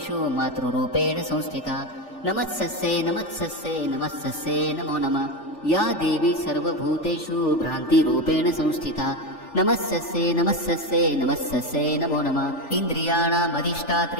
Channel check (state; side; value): late; right; 3.4 ms